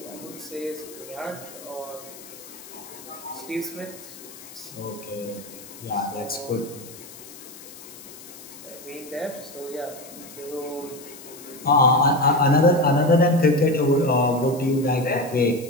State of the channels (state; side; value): noise; left; hiss, 17 dB below the sound